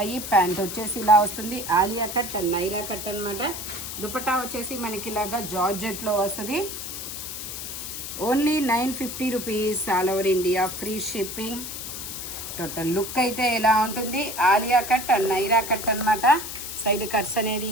ప్యాంట్ వచ్చేసి ఇలా వస్తుంది. Alia cut and Naira cut అనమాట. దుపట్టా వచ్చేసి మనకి ఇలాగా జార్జెట్లో వస్తుంది. Only 950 rupees all over India, free shipping. Total look అయితే ఇలా ఉంటుంది. Alia cut and Naira cut అనమాట. సైడ్ కట్స్ అనేది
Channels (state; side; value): noise; left; hiss, 7 dB below the sound